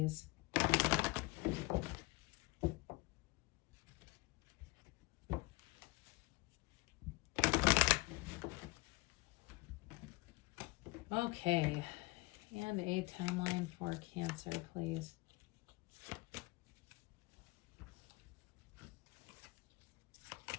Okay, and a timeline for Cancer, please.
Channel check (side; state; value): right; quieter; 23.2 dB